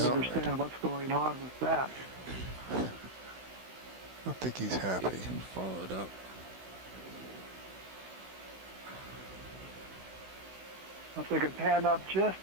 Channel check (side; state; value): left; late; 16 ms